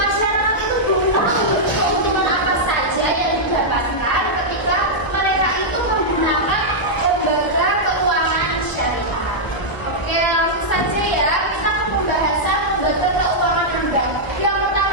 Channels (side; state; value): right; late; 1.2 ms